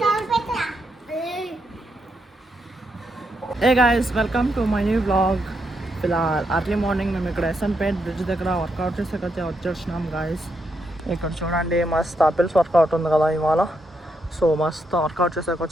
Hey guys, welcome to my new blog. ఇలా అర్లీ మార్నింగ్ మేము ఇక్కడ ఎస్ఎన్పేట్ బ్రిడ్జ్ దగ్గర వర్కౌట్ చేసేకైతే వచ్చేసినాం గాయస్. ఇక్కడ చూడండి మస్త్ ఆపిల్స్ వర్కౌట్ ఉంది కదా ఇవాళ. సో మస్త్ వర్కౌట్ చేసేకి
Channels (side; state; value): both; normal; correlation 0.80